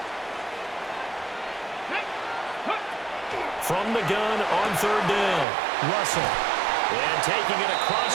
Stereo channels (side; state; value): left; drops out; at 5.5 s